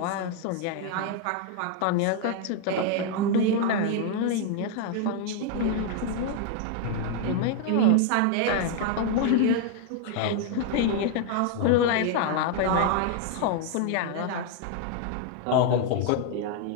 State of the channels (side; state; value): both; different; correlation 0.00